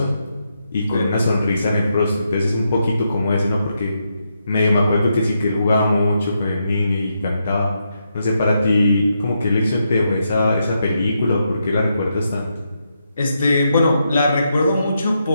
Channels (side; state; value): both; inverted; correlation -0.82